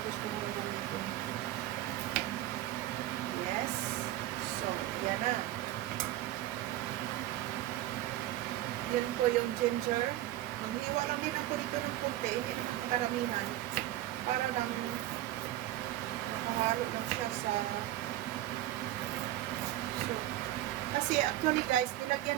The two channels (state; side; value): quieter; left; 14.7 dB